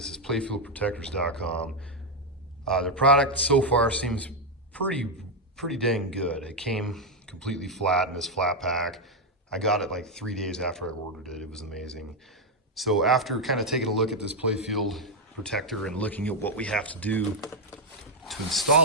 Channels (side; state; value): both; normal; correlation 0.02